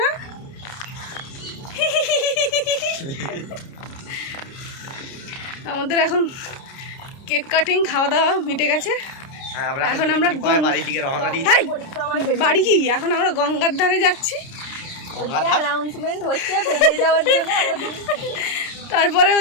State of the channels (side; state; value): right; late; 30 ms